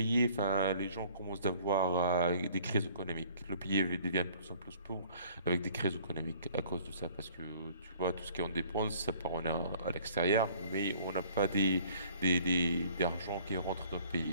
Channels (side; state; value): both; inverted; correlation -0.55